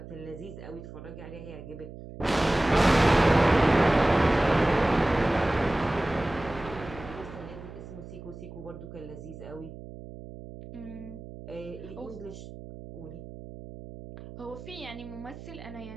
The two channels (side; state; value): right; noise; hum, 14 dB below the sound